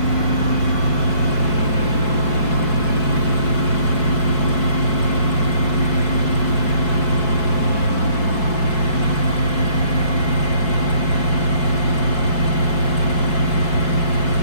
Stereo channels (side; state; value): right; late; 4.6 ms